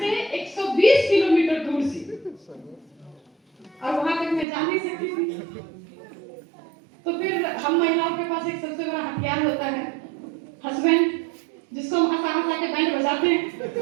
120 किलोमीटर दूर से, और वहां तक मैं जा नहीं सकती थी। तो फिर हम महिलाओं के पास एक सबसे बड़ा हथियार होता है, हस्बैंड, जिसको हम हंसा हंसा के बैंड बजाते हैं।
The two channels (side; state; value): left; drops out; at 4.5 s